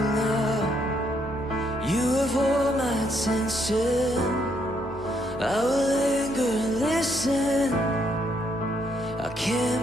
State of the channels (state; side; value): normal; both; correlation 0.73